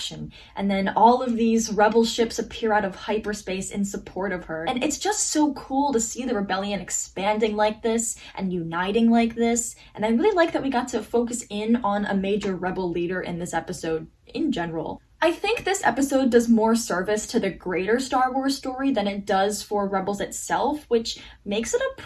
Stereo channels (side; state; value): both; identical; correlation 1.00